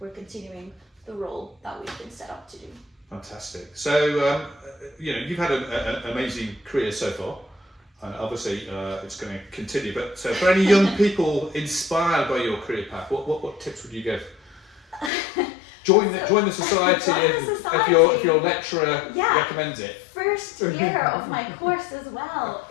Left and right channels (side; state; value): right; drops out; at 15.1 s